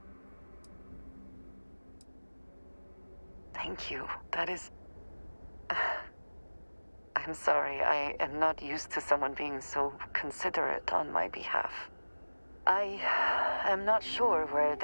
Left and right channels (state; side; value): inverted; both; correlation -1.00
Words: Thank you. That is... I'm sorry, I am not used to someone being so considerate on my behalf. I am not sure where